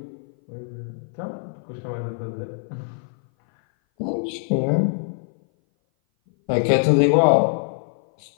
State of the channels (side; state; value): right; silent; 58 dB below the other